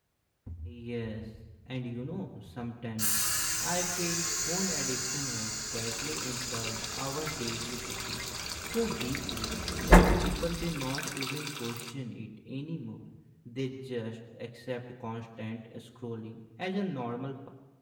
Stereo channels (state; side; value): identical; both; correlation 1.00